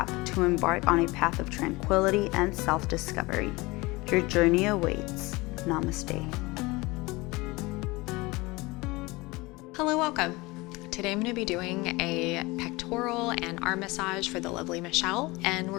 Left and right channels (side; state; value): right; quieter; 22.9 dB